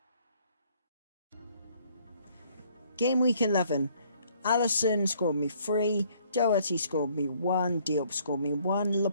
Game week 11, Alisson scored me 3, Doherty scored me 1, Diop scored me 1,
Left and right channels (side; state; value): both; inverted; correlation -0.63